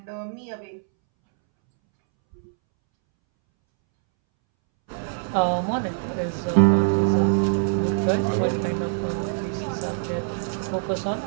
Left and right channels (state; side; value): silent; left; 63 dB below the other